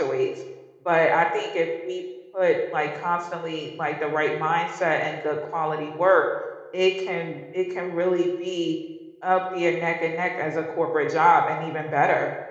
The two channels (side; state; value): both; identical; correlation 1.00